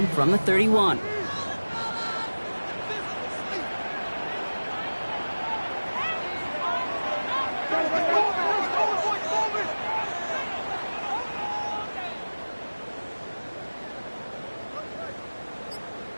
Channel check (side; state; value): both; inverted; correlation -1.00